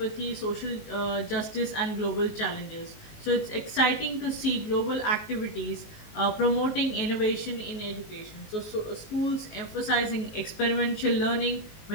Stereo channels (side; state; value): right; late; 19 ms